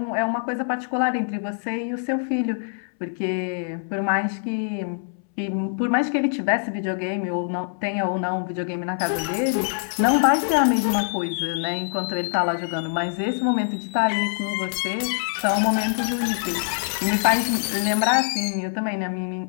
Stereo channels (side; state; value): right; silent; 62 dB below the other